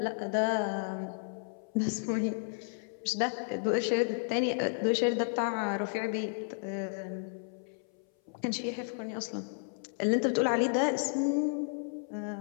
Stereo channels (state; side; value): silent; right; 56 dB below the other